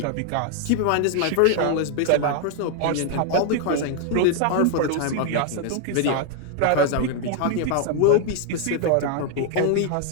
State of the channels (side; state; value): both; different; correlation 0.00